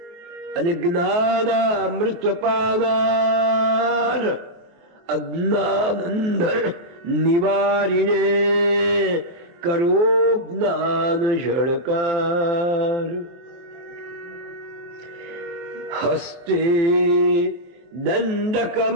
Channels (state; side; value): late; left; 23 ms